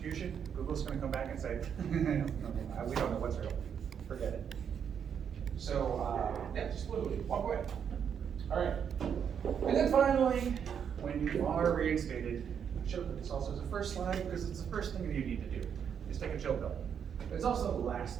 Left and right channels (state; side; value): quieter; left; 7.8 dB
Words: Google's going to come back and say, we don't know what's real. Forget it. So, yeah, just literally walk away. All right. And then finally, when you are reinstated, I should have put this also as a first slide because it's the first thing that you need to do is take a chill pill. But it's also the last